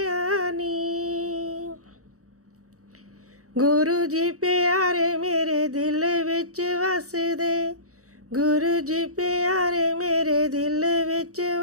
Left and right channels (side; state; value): left; late; 0.65 ms